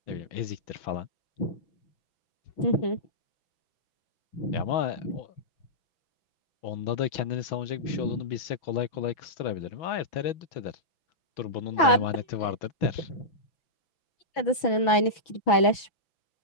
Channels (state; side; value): late; right; 6.1 ms